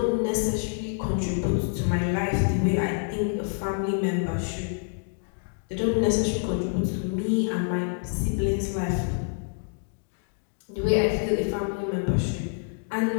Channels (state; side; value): silent; right; digital silence